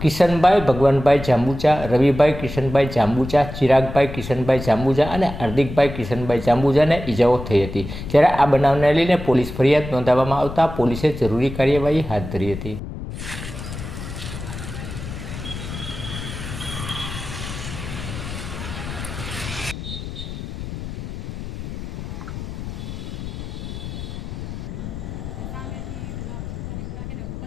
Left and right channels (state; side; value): noise; left; rumble, 9 dB below the sound